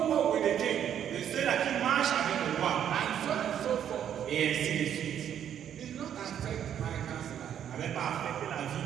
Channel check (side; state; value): left; quieter; 9.5 dB